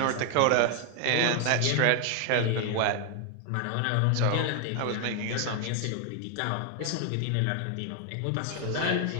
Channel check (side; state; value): both; different; correlation 0.00